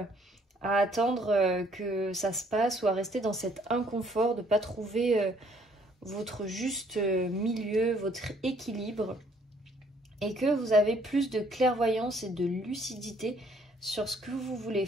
à attendre que ça se passe ou à rester dans cet inconfort de ne pas trouver votre juste milieu, votre équilibre, et que vous avez plus de clairvoyance et de lucidité sur ce que vous voulez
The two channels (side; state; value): both; normal; correlation 0.63